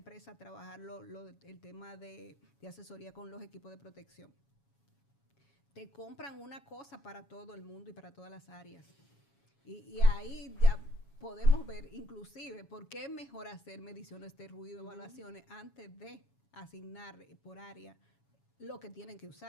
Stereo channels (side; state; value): right; late; 7.2 ms